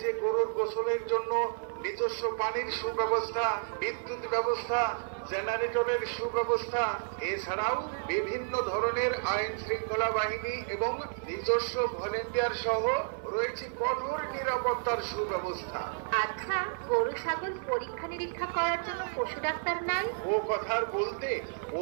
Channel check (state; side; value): silent; left; 57 dB below the other